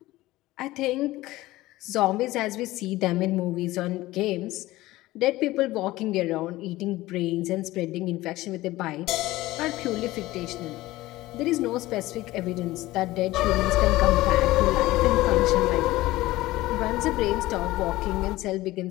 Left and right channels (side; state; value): right; quieter; 17.7 dB